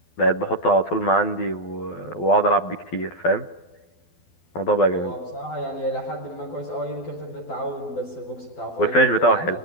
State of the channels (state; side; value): late; right; 12 ms